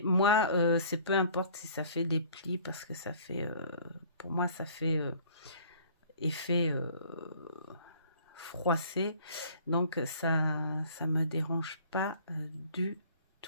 moi c'est peu importe si ça fait des plis parce que ça fait pour moi ça fait effet froissé, donc ça me dérange pas du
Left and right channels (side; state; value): both; inverted; correlation -0.52